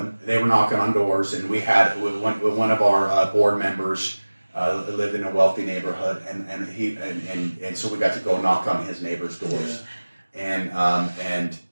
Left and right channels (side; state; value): both; inverted; correlation -1.00